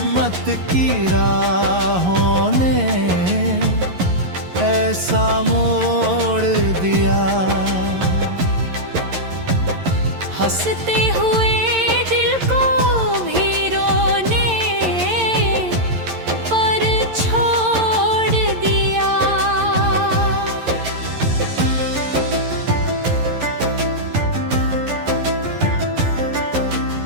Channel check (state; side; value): late; left; 11 ms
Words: की राहों ने ऐसा मोड़ दिया। हंसते हुए दिल को भी रोने पर छोड़ दिया।